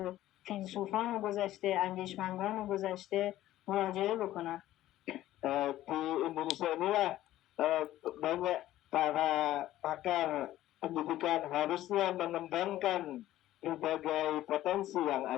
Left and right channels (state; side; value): quieter; right; 14.3 dB